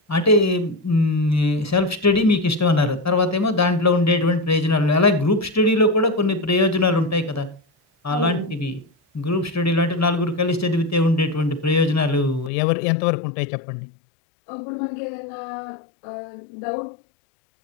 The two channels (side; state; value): right; drops out; at 12.5 s